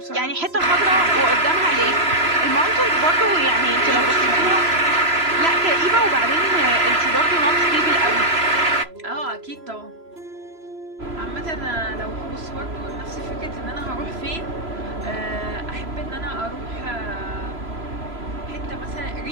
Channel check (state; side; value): late; left; 3.0 ms